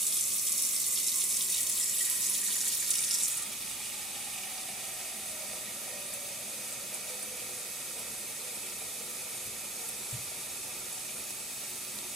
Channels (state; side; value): normal; both; correlation 0.42